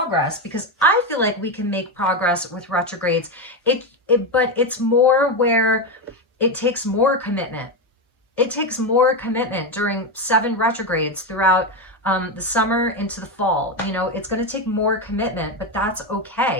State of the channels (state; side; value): normal; both; correlation 0.12